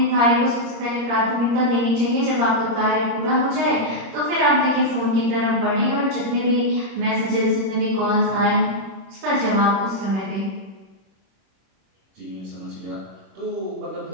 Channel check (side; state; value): left; late; 26 ms